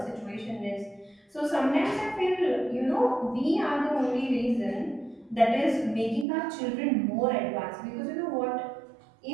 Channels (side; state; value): left; drops out; at 6.2 s